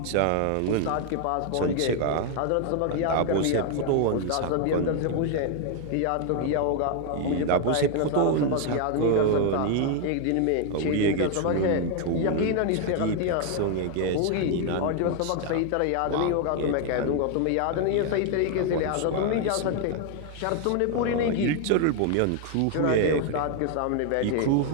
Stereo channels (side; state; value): both; different; correlation 0.00